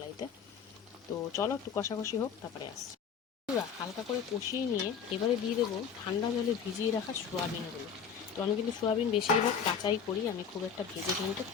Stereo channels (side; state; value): right; quieter; 6.9 dB